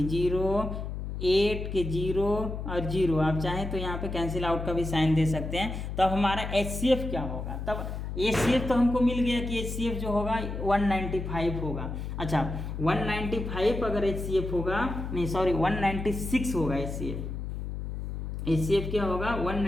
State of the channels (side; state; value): left; noise; hum, 5 dB below the sound